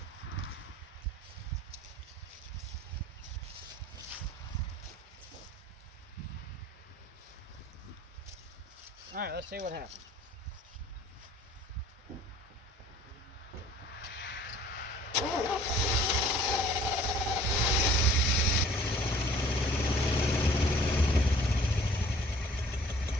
All right, let's see what happens.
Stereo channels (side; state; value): both; normal; correlation 0.52